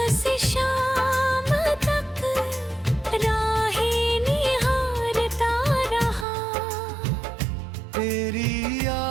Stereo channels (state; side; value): drops out; left; at 6.2 s